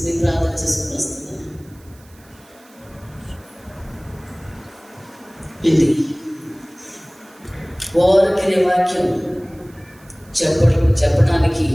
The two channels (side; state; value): right; noise; hiss, 28 dB below the sound